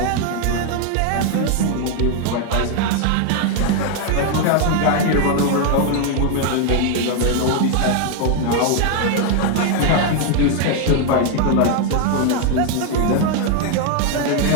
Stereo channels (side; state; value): both; different; correlation 0.00